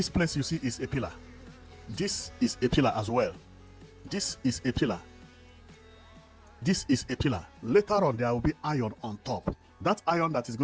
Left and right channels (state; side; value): identical; both; correlation 1.00